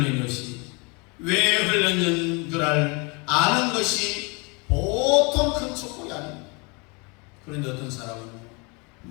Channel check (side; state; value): right; quieter; 30.3 dB